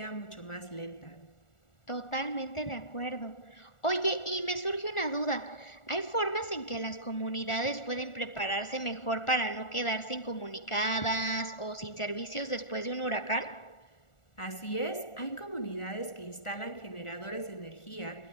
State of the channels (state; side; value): late; right; 1.4 ms